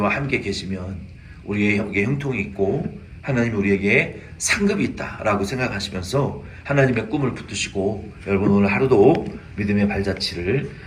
함께 계시면 우리에게 형통이 있고 하나님이 우리에게 상급이 있다라고 생각하시면서 하나님의 꿈을 붙드시고 여러분 오늘 하루도 믿음의 발자취를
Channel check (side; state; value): both; identical; correlation 1.00